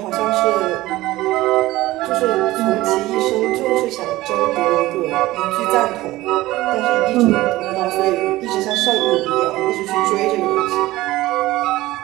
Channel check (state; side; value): quieter; left; 17.7 dB